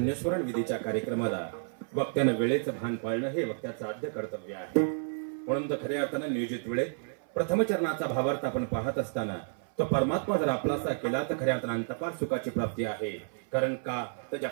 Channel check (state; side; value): silent; left; 56 dB below the other